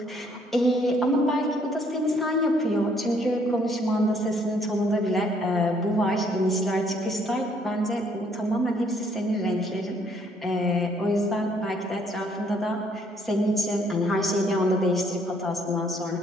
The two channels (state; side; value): normal; both; correlation 0.66